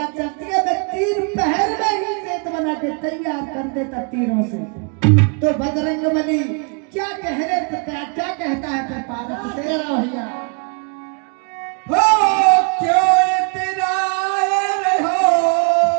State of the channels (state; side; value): quieter; left; 36.9 dB